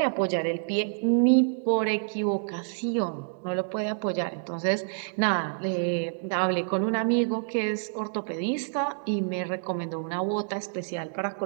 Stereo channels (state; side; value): silent; left; digital silence